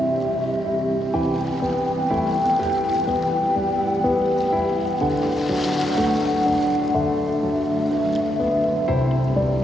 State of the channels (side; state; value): both; normal; correlation 0.82